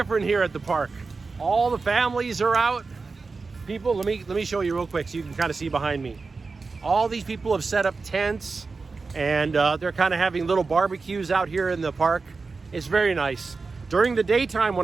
here at the park. All the families are out. People, let me show you real quick so you can kind of see behind me. All these people have set up tents, and they're kind of having little barbecues out here in the park. It's very nice. During the daytime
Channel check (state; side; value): quieter; left; 4.3 dB